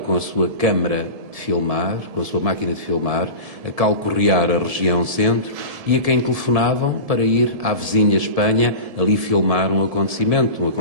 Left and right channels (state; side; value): late; left; 1.7 ms